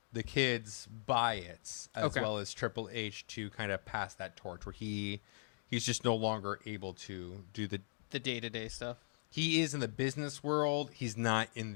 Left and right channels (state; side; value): silent; right; digital silence